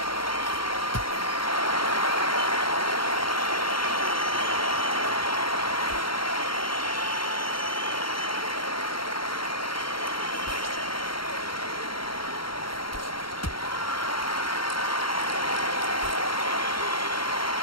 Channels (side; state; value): right; late; 0.73 ms